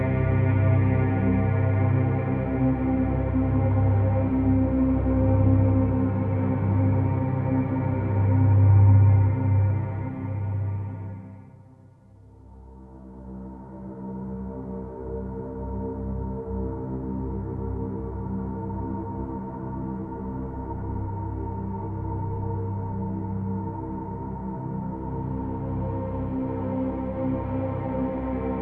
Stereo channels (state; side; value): identical; both; correlation 1.00